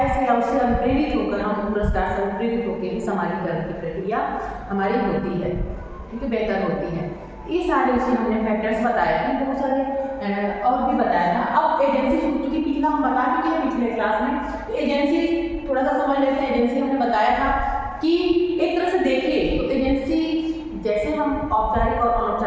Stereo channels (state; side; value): identical; both; correlation 1.00